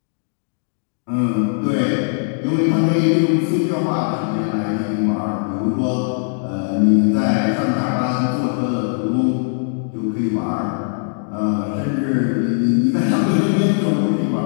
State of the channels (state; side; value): silent; right; digital silence